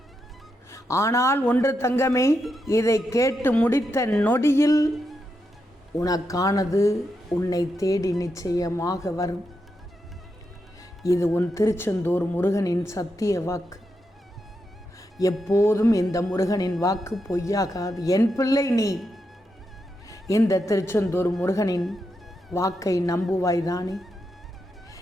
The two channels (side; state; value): both; normal; correlation 0.85